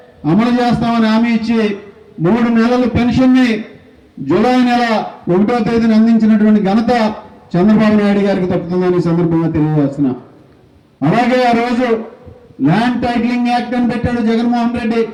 అమలు చేస్తామని హామీ ఇచ్చి 3 నెలల పెన్షన్ని జూలై నెల 1వ తేదీన అందించినటువంటి ఘనత చంద్రబాబు నాయుడు గారికి తప్పుతుందని ఈ సందర్భంగా తెలియజేస్తున్నా. అలాగే ఆ రోజు ల్యాండ్ టైటిలింగ్ యాక్ట్ అని పెట్టాడు జగన్మోహన్ రెడ్డి.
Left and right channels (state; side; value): identical; both; correlation 1.00